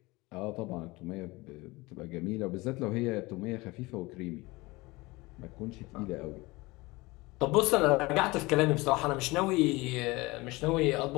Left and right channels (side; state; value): right; quieter; 22.4 dB